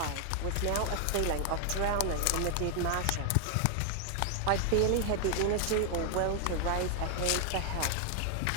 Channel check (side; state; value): both; different; correlation 0.00